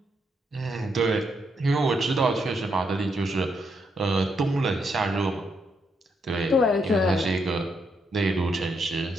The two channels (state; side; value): normal; both; correlation 0.78